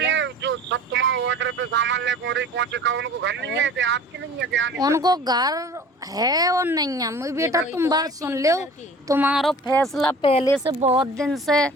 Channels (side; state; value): both; normal; correlation 0.44